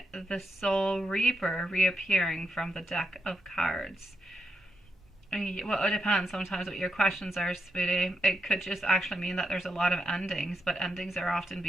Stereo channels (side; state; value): both; normal; correlation 0.82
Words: the Soul Reaper reappearing from the deck of cards? Well, it depends sometimes what your questions are, sweetie. It could just actually mean that there's a lot of endings, but endings are often